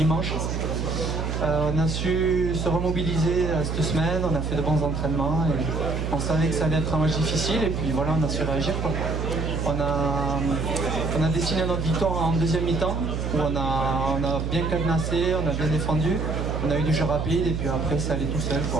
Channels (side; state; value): right; noise; hum, 2 dB below the sound